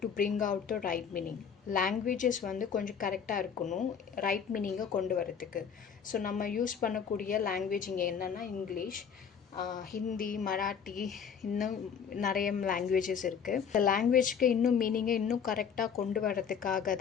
to bring out the right meaning. Languages கொஞ்சம் கரெக்டாக இருக்கணும் ரைட் மீனிங்கை கொண்டு வரதுக்கு. ஸோ நம்ம யூஸ் பண்ணக்கூடிய லாங்குவேஜ் இங்கே என்னென்னா இங்கிலீஷ், ஹிந்தி, மராட்டி, இன்னும் நிறைய லாங்குவேஜஸ் இருக்குது. இந்த லாங்குவேஜ்க்கு இன்னும் மீனிங்கை இன்னும் கரெக்டாக கொண்டு வரதுக்காக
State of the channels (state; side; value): quieter; right; 7.1 dB